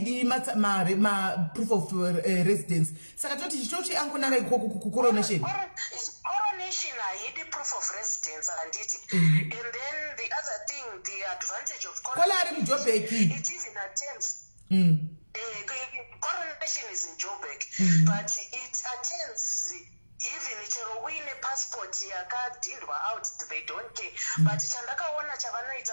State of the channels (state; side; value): inverted; both; correlation -1.00